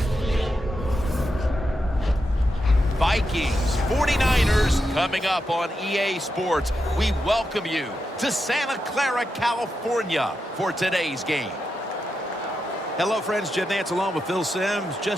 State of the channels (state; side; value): normal; both; correlation 0.87